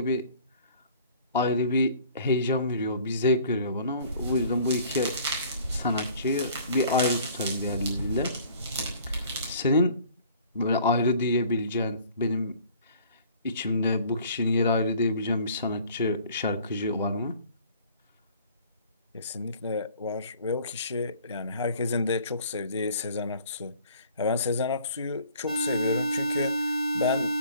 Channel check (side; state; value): both; inverted; correlation -0.52